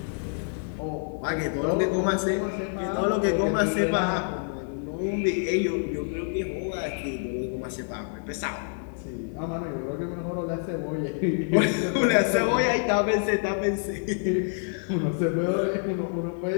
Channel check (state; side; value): silent; right; 60 dB below the other